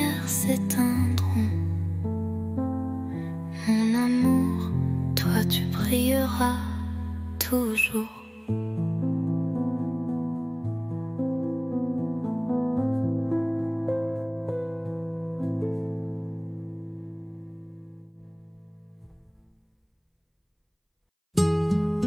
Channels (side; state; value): both; identical; correlation 1.00